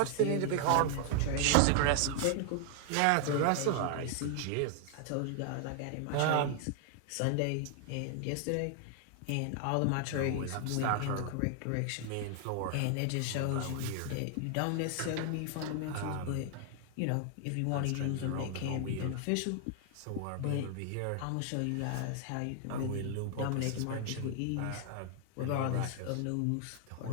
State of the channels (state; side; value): different; both; correlation 0.00